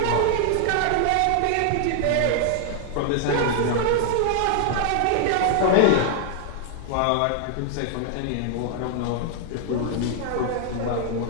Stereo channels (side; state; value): both; different; correlation 0.00